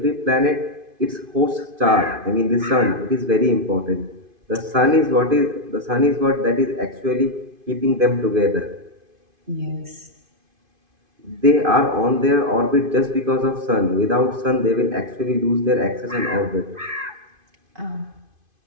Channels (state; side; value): late; left; 2.5 ms